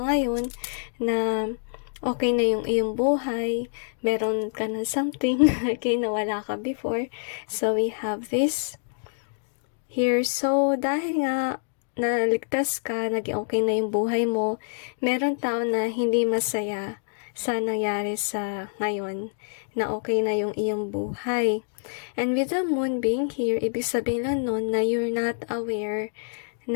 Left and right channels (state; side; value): silent; right; digital silence